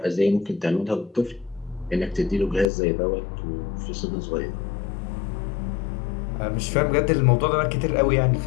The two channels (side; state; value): right; drops out; at 2.7 s